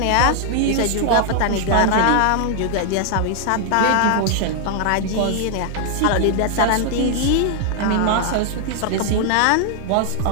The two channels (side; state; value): both; different; correlation 0.00